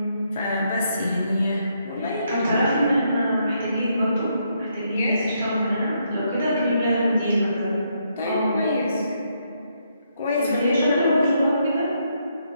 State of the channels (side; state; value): both; inverted; correlation -0.76